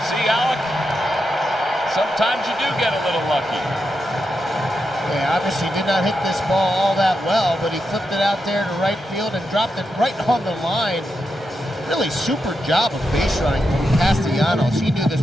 See, Alec, sometimes you do get a little lucky. Yeah, obviously did not hit this ball all that well, but he flipped it out there to right field and dropped it right on the line. Really super job of base running from Castellanos. He knew this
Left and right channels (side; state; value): both; normal; correlation 0.86